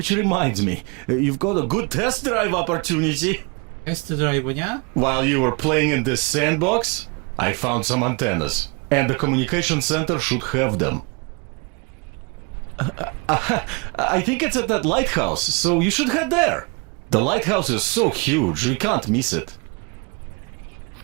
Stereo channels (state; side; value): quieter; left; 31.1 dB